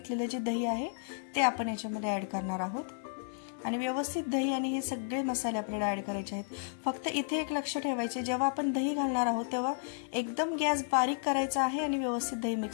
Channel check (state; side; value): silent; right; 56 dB below the other